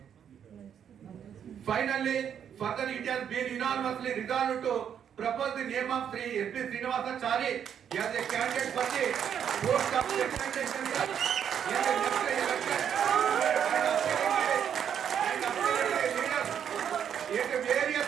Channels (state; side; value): quieter; left; 8.6 dB